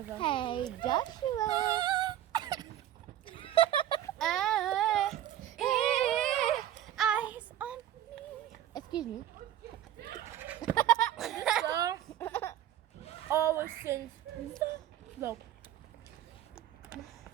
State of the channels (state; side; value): quieter; left; 11.8 dB